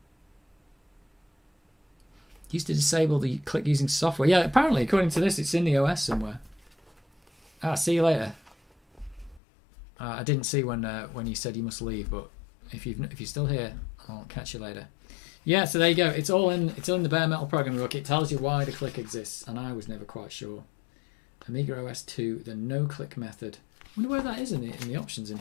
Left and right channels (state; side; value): drops out; right; at 9.4 s